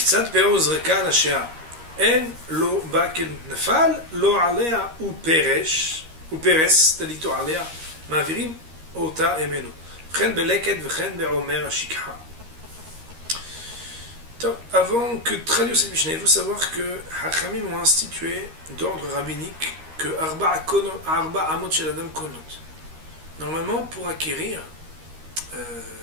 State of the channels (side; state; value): left; late; 13 ms